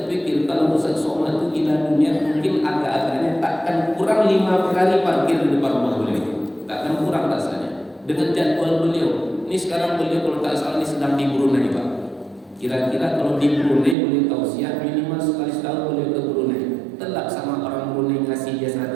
kalau Ustaz Somad itu gila dunia mungkin agak-agaknya takkan kurang 5 kali parkir di depan rumah beliau. Takkan kurang rasanya. Dengan jadwal beliau. Ini sekarang beliau kalau tak salah ini sedang di Brunei Pak. Kira-kira kalau di Brunei boleh tausiah minimal sekali setahun boleh ke Brunei. Telak sama orang Brunei ngasih dia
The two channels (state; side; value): drops out; left; at 14.0 s